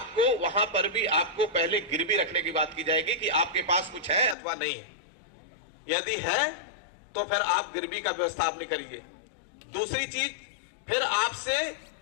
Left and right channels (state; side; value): drops out; right; at 4.4 s